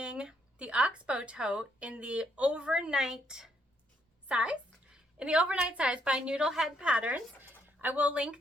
the Oxbow tote in the overnight size, by Noodlehead Patterns. I will link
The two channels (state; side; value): normal; both; correlation 0.73